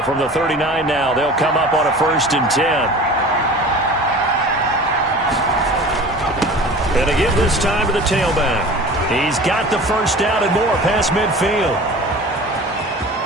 from the 39 now, they'll come up on a 1st and 10. And to give this time to the tailback. He's got the first down and more past midfield.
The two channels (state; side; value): normal; both; correlation 0.39